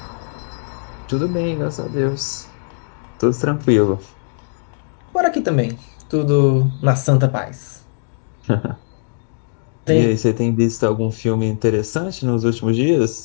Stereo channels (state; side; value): silent; right; digital silence